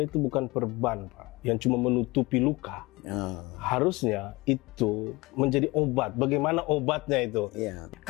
itu bukan perban, Pak, yang cuma menutupi luka. Harusnya itu menjadi obat. Bagaimana obatnya itu? Ya.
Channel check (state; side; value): quieter; right; 22.6 dB